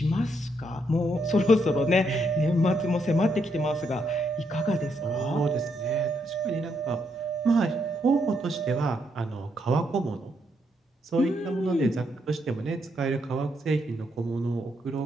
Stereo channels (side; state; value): both; normal; correlation 0.77